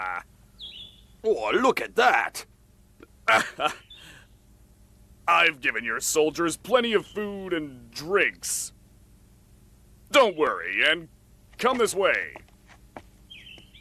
Oh, look at that! I've given your soldiers plenty of food and drinks. Don't worry, and come this way.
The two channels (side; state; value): both; identical; correlation 1.00